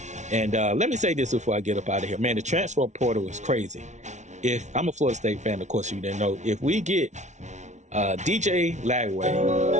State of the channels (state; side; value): late; left; 0.34 ms